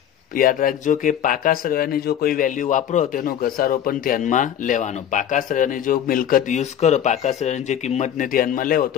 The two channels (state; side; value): quieter; right; 9.9 dB